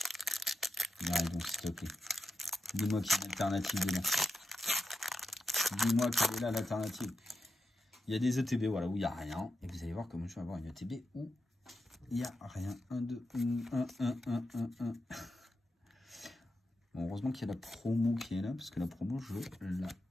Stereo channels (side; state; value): both; normal; correlation 0.88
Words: Miraidon, s'il te plaît. Dis-moi qu'il y a une alternative dedans. Dis-moi quelle est là l'alternative. Il y a des ETB, voilà, où il n'y a rien. Et vous allez voir comment je vais avoir une ETB où il n'y a rien. 1, 2, 1. Bon, heureusement qu'il y a la promo qui est là, parce que la promo, je